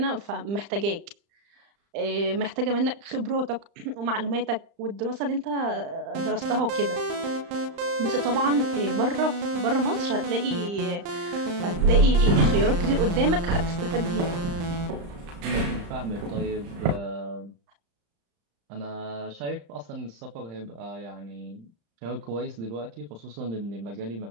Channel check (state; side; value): late; left; 35 ms